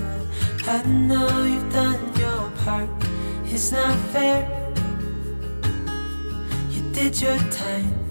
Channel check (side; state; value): both; inverted; correlation -1.00